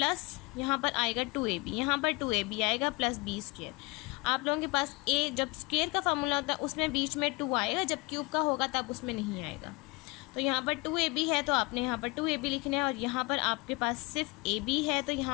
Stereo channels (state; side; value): quieter; right; 25.9 dB